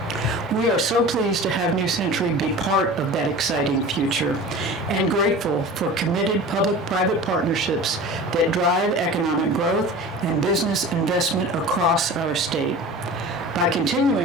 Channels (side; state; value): both; normal; correlation 0.37